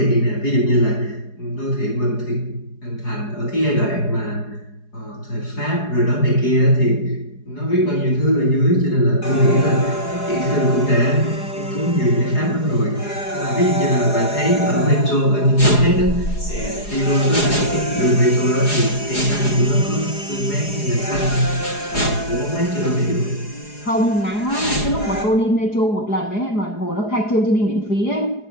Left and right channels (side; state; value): right; late; 4.8 ms